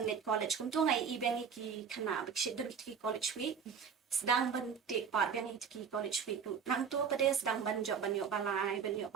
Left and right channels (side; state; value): left; quieter; 6.6 dB